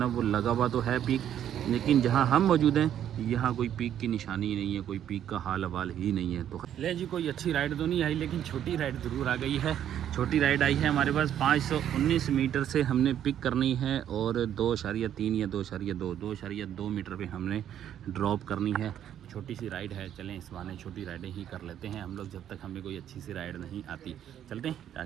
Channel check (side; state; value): left; quieter; 10.3 dB